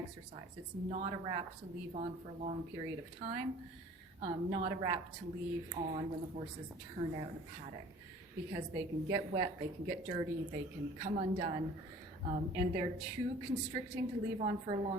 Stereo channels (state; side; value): normal; both; correlation 0.48